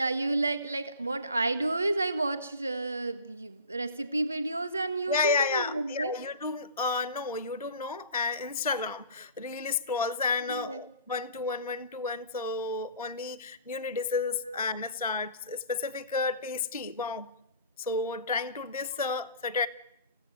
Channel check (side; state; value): both; inverted; correlation -0.43